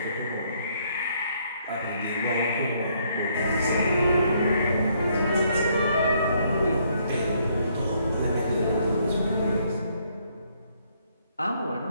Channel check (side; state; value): both; inverted; correlation -0.69